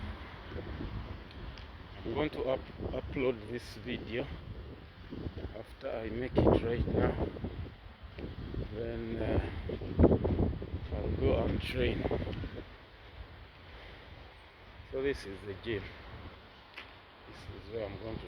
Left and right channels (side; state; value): both; identical; correlation 1.00